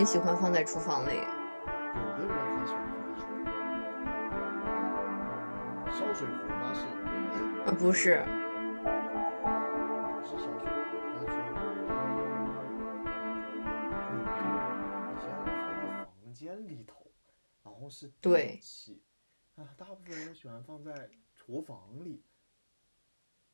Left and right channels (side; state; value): both; inverted; correlation -1.00